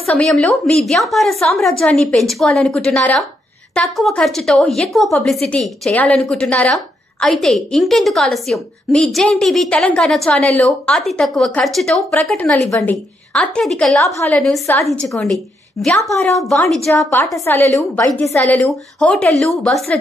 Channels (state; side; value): normal; both; correlation 0.79